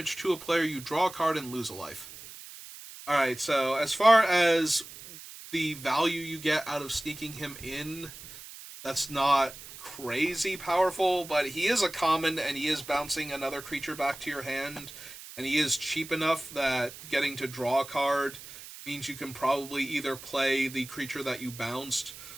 to a player. You draw a card and lose a life. Alright, so as far as the value you get out of sneaking him in, that's not crazy powerful, but he is a common and he is bouncing another creature back to your hand, and he is cheap enough that getting to draw a card means you can probably either play the creature that you bounced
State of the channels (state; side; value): noise; right; hiss, 15 dB below the sound